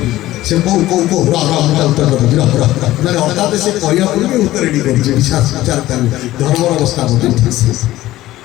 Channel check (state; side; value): quieter; right; 15.8 dB